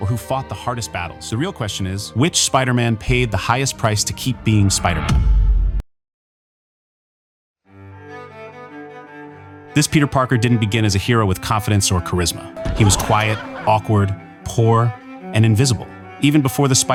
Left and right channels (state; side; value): identical; both; correlation 1.00